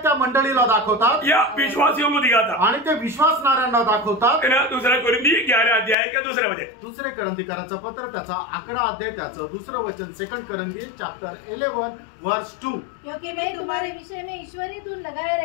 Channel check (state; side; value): drops out; right; at 6.0 s